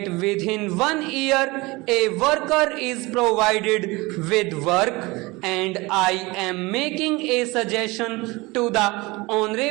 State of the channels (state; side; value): quieter; left; 23.1 dB